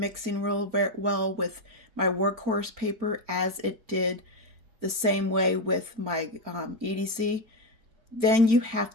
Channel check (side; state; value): left; late; 4.4 ms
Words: real well with my workhorse paper as it did the same way with my EDC. Then you have